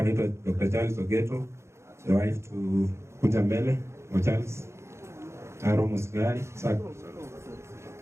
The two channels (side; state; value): left; late; 0.13 ms